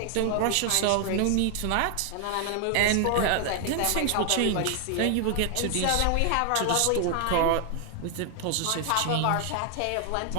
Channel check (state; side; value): different; both; correlation 0.00